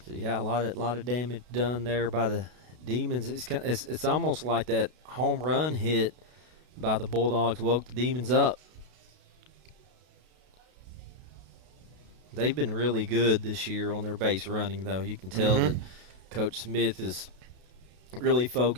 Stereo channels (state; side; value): late; left; 32 ms